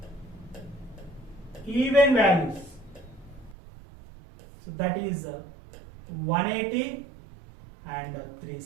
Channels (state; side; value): drops out; left; at 3.6 s